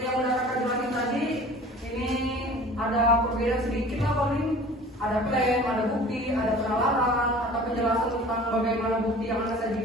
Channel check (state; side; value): normal; both; correlation 0.44